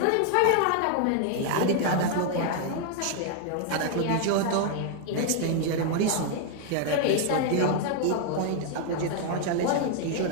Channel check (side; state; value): both; different; correlation 0.00